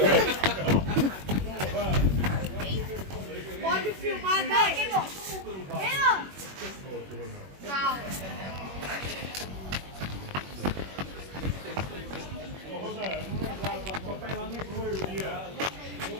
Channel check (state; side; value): late; left; 21 ms